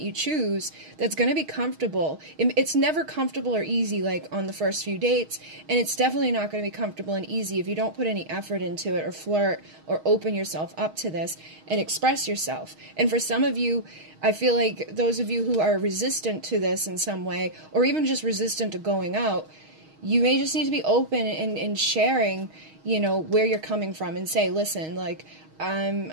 you choose that's going to be comfortable. It's never comfortable or easy like on the first few dates, and it's definitely not going to be comfortable and easy if you don't put any effort into it or flirt or open yourself up to this and express yourself. And for some of you, I feel like those of you who are resistant to this in some way, or even just resistant to going out, you may just need to be open and sharing, you know, where you're coming from, and say, listen, like,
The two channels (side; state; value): left; late; 6.4 ms